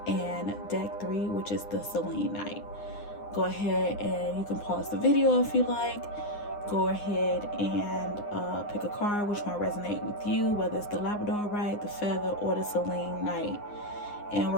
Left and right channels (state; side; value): late; right; 9.7 ms